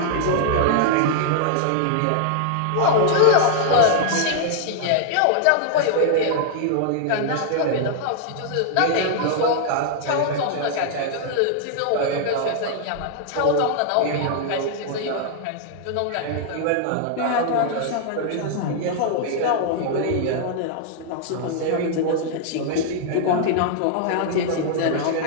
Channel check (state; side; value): different; both; correlation 0.00